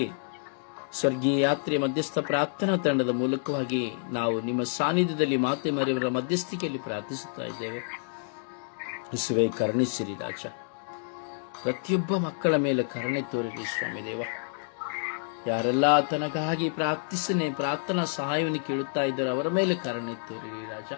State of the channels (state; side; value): silent; right; digital silence